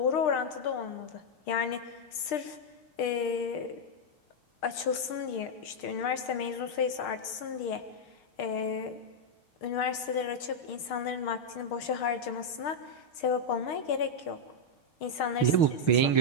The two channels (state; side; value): late; right; 6.5 ms